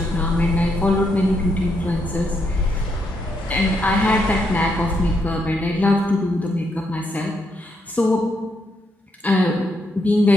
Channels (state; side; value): normal; both; correlation 0.78